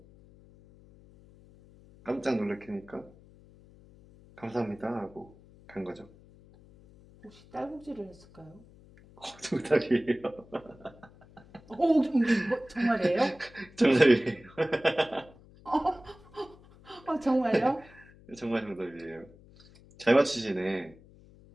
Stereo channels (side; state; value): left; noise; hum, 24 dB below the sound